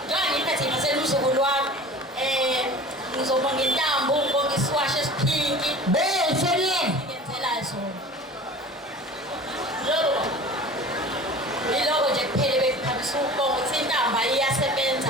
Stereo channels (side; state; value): both; normal; correlation 0.40